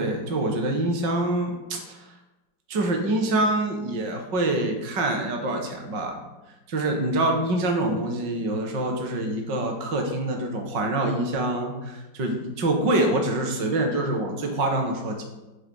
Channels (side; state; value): left; late; 5.3 ms